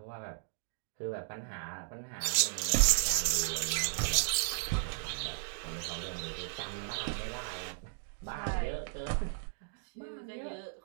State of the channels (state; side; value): silent; left; digital silence